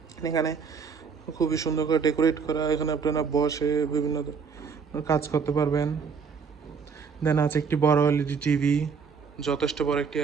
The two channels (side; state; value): left; quieter; 5.8 dB